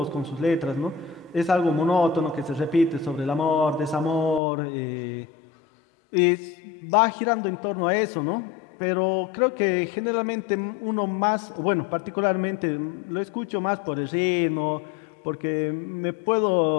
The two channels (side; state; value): right; drops out; at 4.4 s